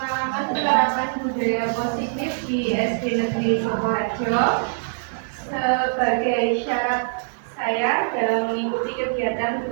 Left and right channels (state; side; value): silent; left; digital silence